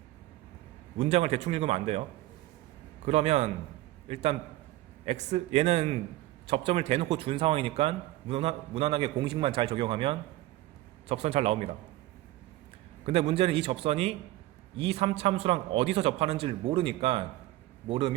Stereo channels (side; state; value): left; quieter; 16.6 dB